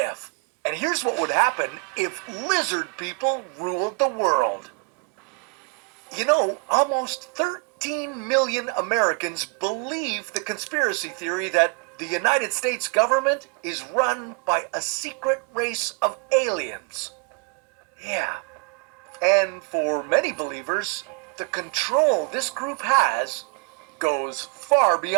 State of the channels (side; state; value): left; quieter; 33.1 dB